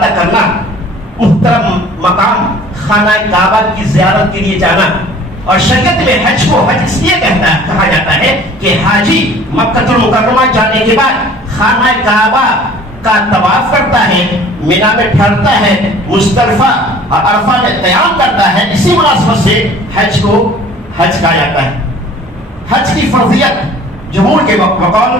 کرنا, محترم مقام خانہ کعبہ کی زیارت کے لیے جانا. اور شریعت میں حج کو حج اس لیے کہا جاتا ہے کہ حاجی مکہ المکرمہ جانے کے بعد خانہ کعبہ کا طواف کرتا ہے, مینا میں ٹھہرتا ہے, مزدلفہ اور عرفہ میں قیام کرتا ہے. اسی مناسبت سے حج کو حج کہا جاتا ہے. حج کی فرضیت جمہور کے بقول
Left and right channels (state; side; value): normal; both; correlation 0.49